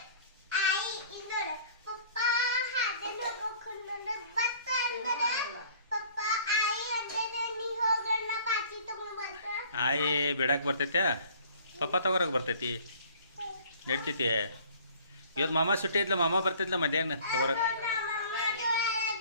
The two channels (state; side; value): inverted; both; correlation -0.52